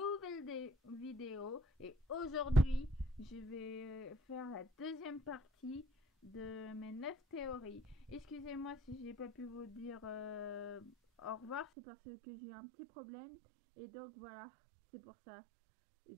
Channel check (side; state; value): left; drops out; at 11.7 s